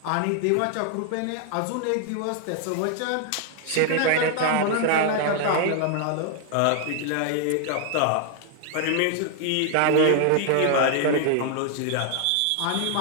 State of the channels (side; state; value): both; different; correlation 0.00